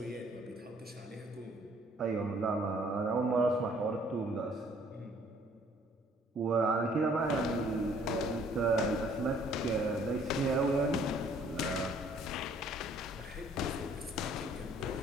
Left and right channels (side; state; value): both; normal; correlation 0.60